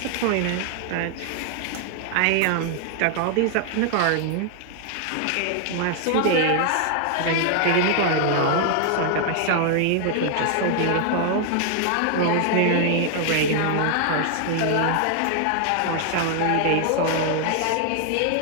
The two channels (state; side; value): different; both; correlation 0.00